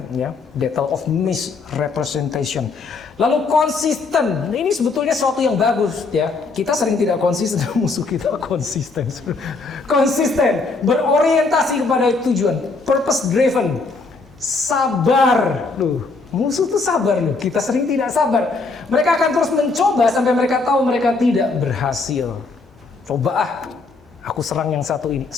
battle of misrepresentation. Lalu konsisten, ini sebetulnya sesuatu yang bagus ya. Kita sering tidak konsisten, musuh kita konsisten. Konsisten, berorientasi kepada tujuan, purpose driven, sabar. Musuh tuh sabar loh. Kita sering tidak sabar. Mereka akan terus mencoba sampai mereka tahu mereka tidak berhasil. Coba aku serang yang satu ini,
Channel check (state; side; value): quieter; right; 4.0 dB